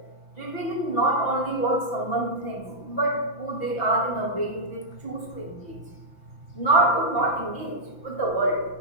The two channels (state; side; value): late; right; 5.9 ms